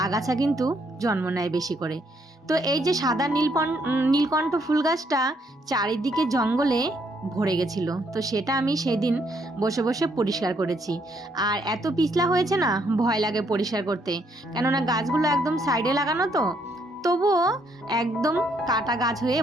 আগাছা কিন্তু জন্ম নেয় বেশি করে। তো এই যে সাদা নীলকণ্ঠ ফুল গাছটা চারিদিকে জঙ্গলে ভরে গেছিল, তো সেটা আমি সেদিন বসে বসে পরিষ্কার করেছি। আর এত পিছলা হয়েছে না, ভয় লাগে পরিষ্কার করতে, কেননা গাছগুলো একদম সাইডে লাগানো, তো তবুও একদম কাটা গাছ হয়ে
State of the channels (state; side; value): normal; both; correlation 0.71